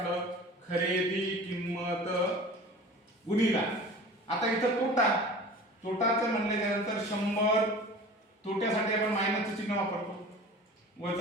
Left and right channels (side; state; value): both; normal; correlation 0.40